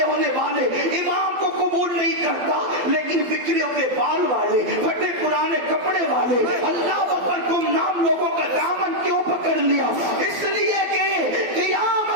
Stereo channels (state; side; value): late; left; 12 ms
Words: होने वाले इमाम को कबूल नहीं करता, लेकिन बिखरे हुए बाल वाले, फटे पुराने कपड़े वाले, अल्लाह अकबर गुमनाम लोगों का दामन क्यों पकड़ लिया? इसलिए कि